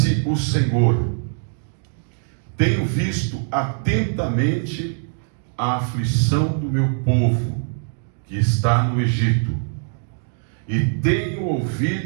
o Senhor: tenho visto atentamente a aflição do meu povo que está no Egito, e tenho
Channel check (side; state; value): left; silent; 64 dB below the other